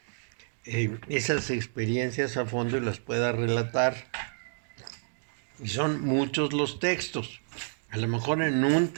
esas experiencias a fondo y las pueda relatar. Y son muchos los textos. A lo mejor en un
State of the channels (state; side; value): silent; left; digital silence